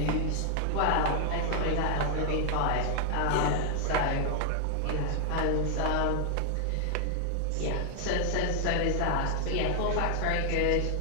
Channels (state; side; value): different; both; correlation 0.00